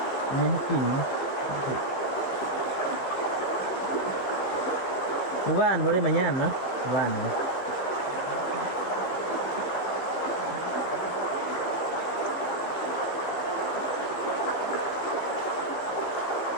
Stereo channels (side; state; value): right; late; 16 ms